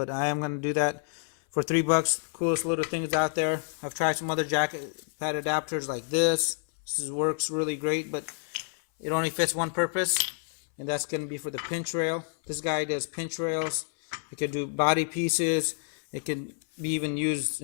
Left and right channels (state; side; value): silent; right; 57 dB below the other